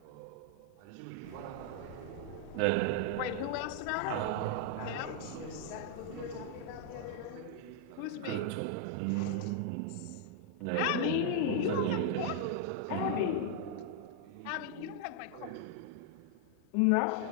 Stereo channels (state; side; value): different; both; correlation 0.00